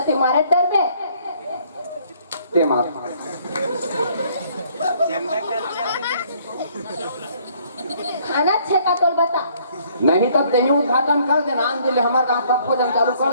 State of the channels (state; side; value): inverted; both; correlation -0.63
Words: तुम्हारे डर में ते मार खाना छे का तोल बता नहीं तब दही उद्घाटन कर देना आन दिले हमारे गाँव सब भोजन चालू